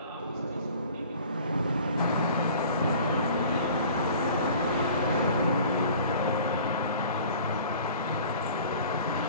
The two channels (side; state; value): both; inverted; correlation -0.47